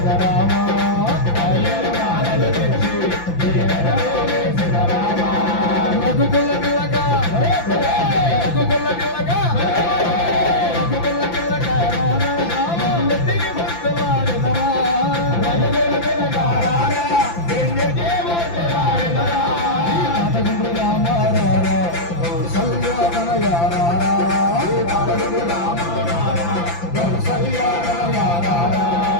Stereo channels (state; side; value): late; right; 5.9 ms